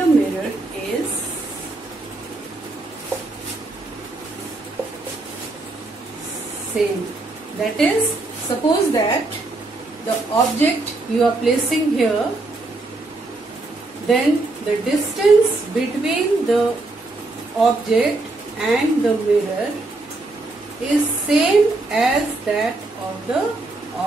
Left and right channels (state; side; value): quieter; left; 3.1 dB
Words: mirror is same. That is, suppose that the object you are placing here, then the distance between the object and the mirror is same as that of the